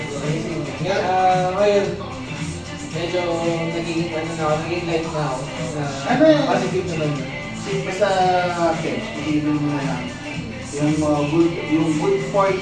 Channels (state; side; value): identical; both; correlation 1.00